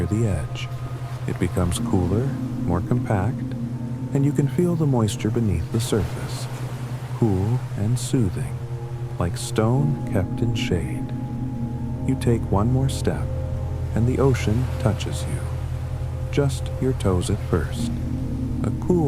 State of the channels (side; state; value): both; identical; correlation 1.00